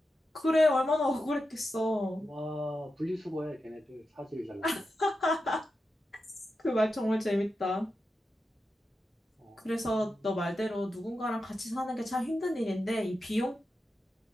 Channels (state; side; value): normal; both; correlation 0.90